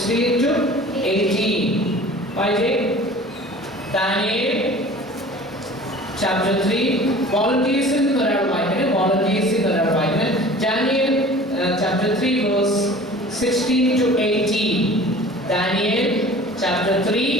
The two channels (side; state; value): both; normal; correlation 0.44